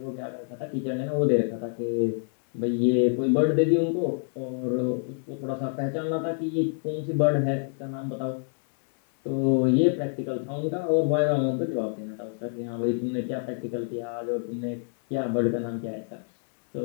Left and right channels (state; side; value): silent; right; 60 dB below the other